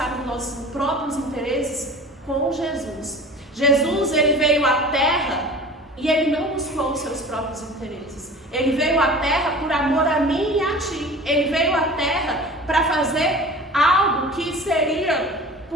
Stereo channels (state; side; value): normal; both; correlation 0.39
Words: os nossos próprios interesses com Jesus. Jesus, ele veio à Terra e ele não buscou os seus próprios interesses. Ele veio à Terra por amor a mim e a ti. Ele veio à Terra para fazer algo que seria